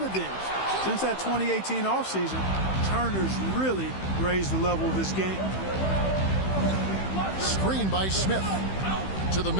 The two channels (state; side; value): late; right; 15 ms